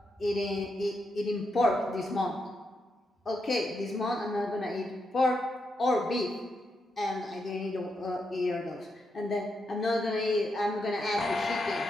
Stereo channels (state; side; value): normal; both; correlation 0.83